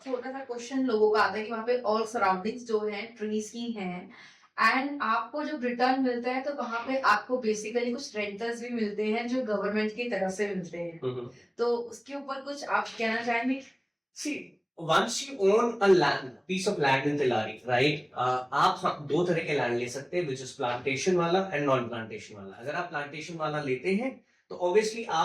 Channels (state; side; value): identical; both; correlation 1.00